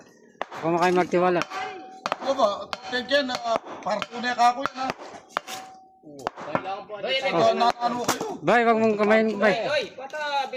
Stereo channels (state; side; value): identical; both; correlation 1.00